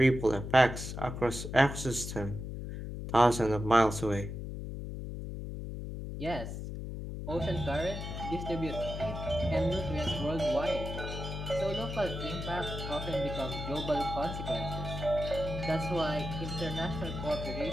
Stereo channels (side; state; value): left; noise; hum, 6 dB below the sound